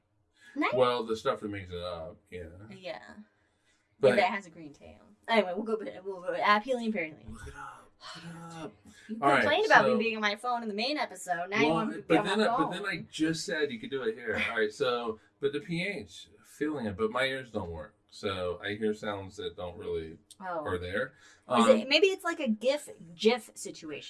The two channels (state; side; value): identical; both; correlation 1.00